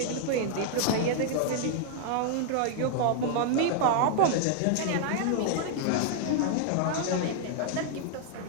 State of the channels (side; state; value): both; different; correlation -0.01